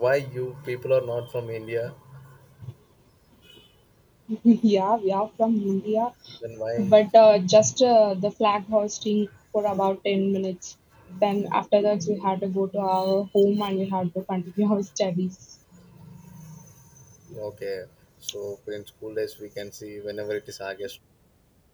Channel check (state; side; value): identical; both; correlation 1.00